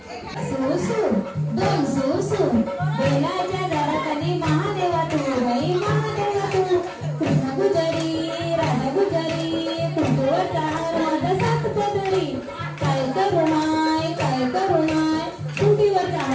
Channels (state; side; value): identical; both; correlation 1.00